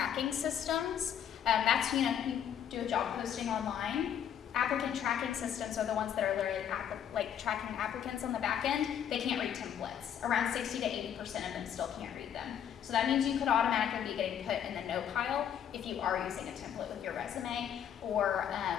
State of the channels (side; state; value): right; quieter; 9.2 dB